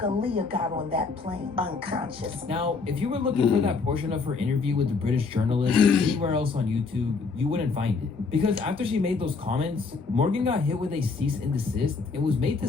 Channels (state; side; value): quieter; right; 4.5 dB